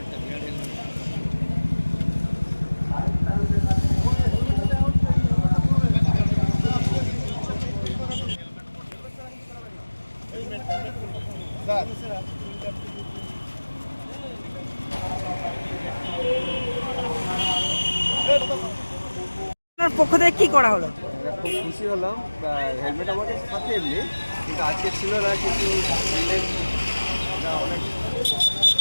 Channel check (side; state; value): both; inverted; correlation -1.00